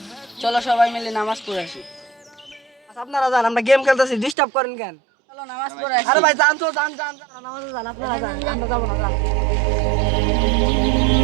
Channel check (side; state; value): left; drops out; at 4.4 s